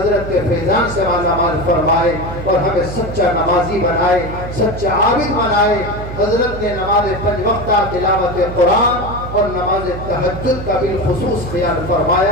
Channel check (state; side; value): noise; right; hum, 9 dB below the sound